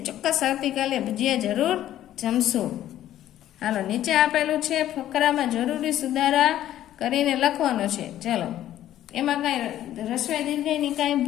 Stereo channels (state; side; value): quieter; right; 12.5 dB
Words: ચોક્કસ આવતીકાલે ભજીયા જરૂર જમશું. હાલો, નીચે આપેલું છે ફકરામાં જરૂરી સુધારા કરીને લખવાનો છે. ચલો, એમાં કાંઈ રસ્વ દીર્ઘની કાંઈ